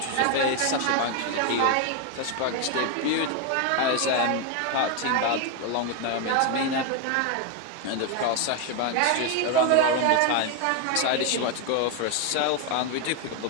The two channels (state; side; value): different; both; correlation 0.01